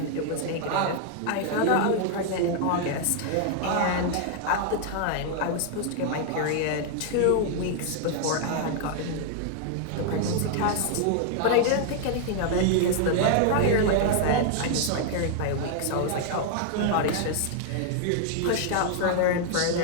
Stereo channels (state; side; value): different; both; correlation 0.00